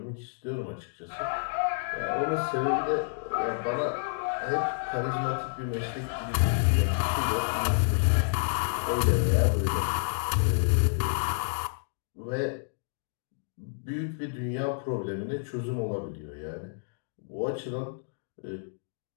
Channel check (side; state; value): right; silent; digital silence